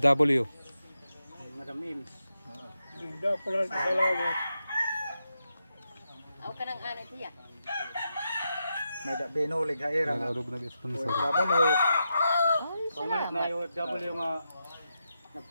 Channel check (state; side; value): inverted; both; correlation -0.87